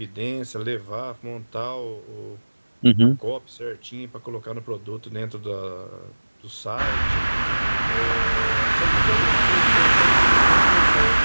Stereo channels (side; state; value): both; inverted; correlation -1.00